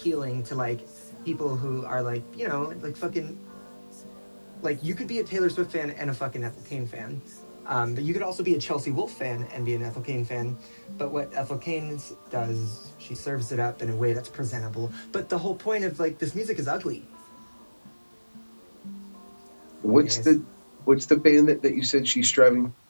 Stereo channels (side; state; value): both; inverted; correlation -1.00